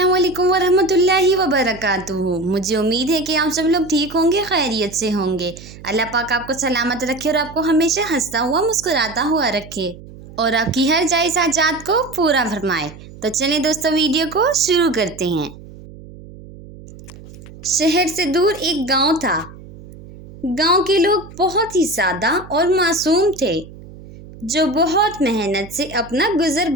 वालेकुम वरहमतुल्लाहि वबरकातुहू। मुझे उम्मीद है कि आप सब लोग ठीक होंगे, खैरियत से होंगे। अल्लाह पाक आपको सलामत रखे और आपको हमेशा हंसता हुआ मुस्कुराता हुआ रखे और आपकी हर जायज़ हाजात को पूरा फरमाए। तो चलें दोस्तों, वीडियो को शुरू करते हैं। शहर से दूर एक गांव था। गांव के लोग बहुत ही सादा और मासूम थे, जो बहुत मेहनत से अपना गुजर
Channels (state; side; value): noise; right; hum, 18 dB below the sound